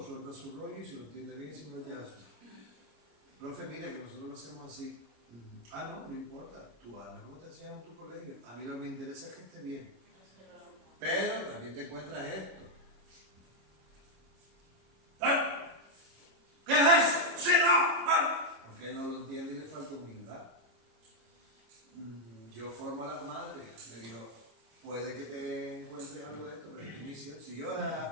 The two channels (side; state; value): left; late; 26 ms